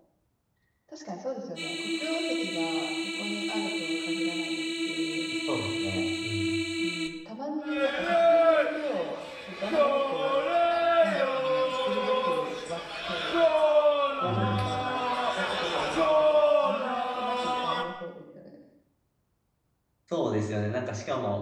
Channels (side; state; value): both; identical; correlation 1.00